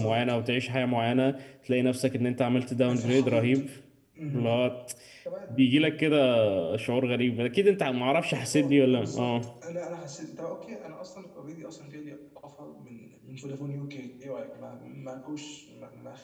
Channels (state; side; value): identical; both; correlation 1.00